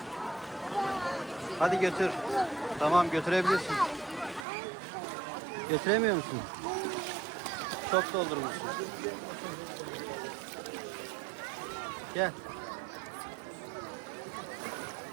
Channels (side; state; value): left; drops out; at 4.5 s